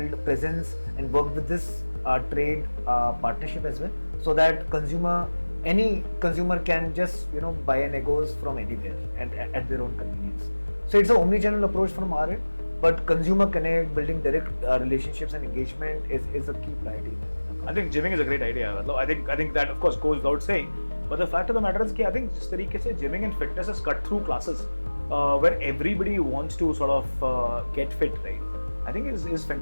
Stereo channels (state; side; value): inverted; both; correlation -1.00